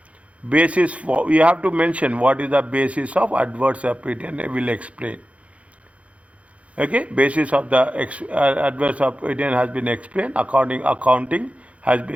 Basis for, we have to mention what is the basis of adverse opinion. I will explain. Okay, basis of the adverse opinion has been explained. Accounting has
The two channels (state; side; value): late; left; 0.064 ms